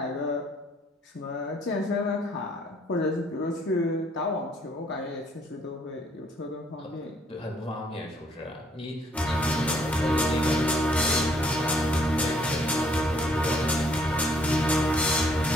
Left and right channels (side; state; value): both; normal; correlation 0.66